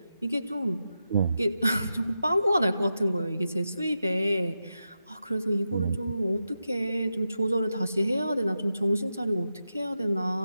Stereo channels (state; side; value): inverted; both; correlation -0.89